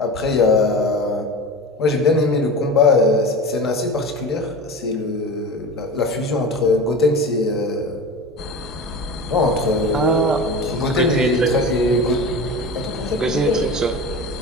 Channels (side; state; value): both; normal; correlation 0.31